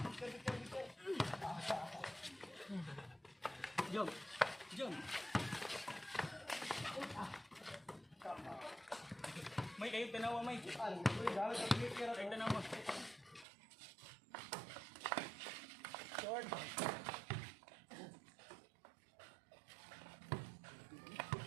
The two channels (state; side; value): drops out; left; at 13.5 s